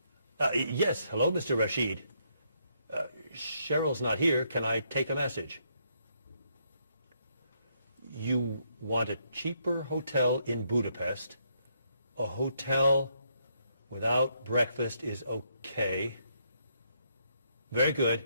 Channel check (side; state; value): both; inverted; correlation -0.74